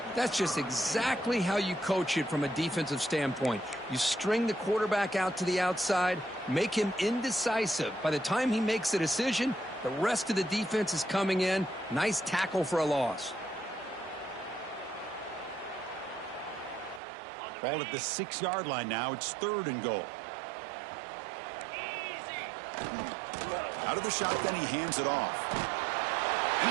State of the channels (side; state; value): left; drops out; at 17.0 s